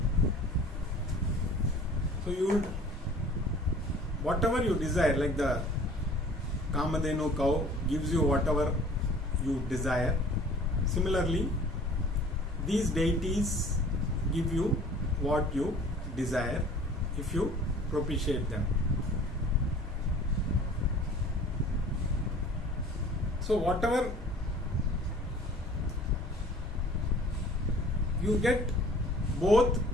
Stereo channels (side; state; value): both; normal; correlation 0.48